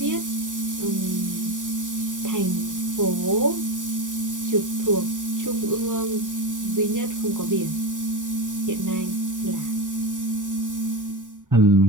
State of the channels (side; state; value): left; late; 0.87 ms